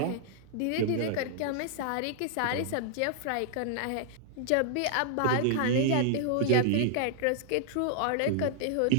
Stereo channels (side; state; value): both; different; correlation -0.01